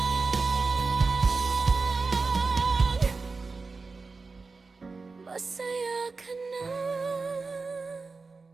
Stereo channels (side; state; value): left; quieter; 4.2 dB